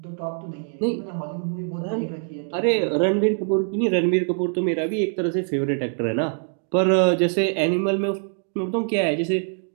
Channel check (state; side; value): silent; left; 63 dB below the other